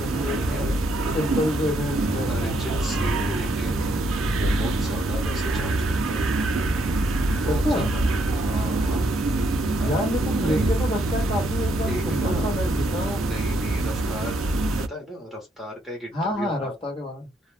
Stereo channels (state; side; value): normal; both; correlation 0.74